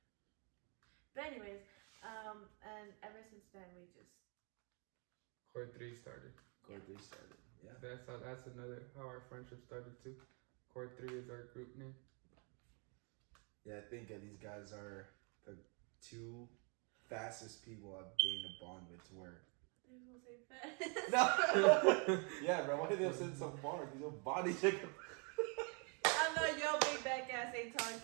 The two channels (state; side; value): quieter; left; 35.6 dB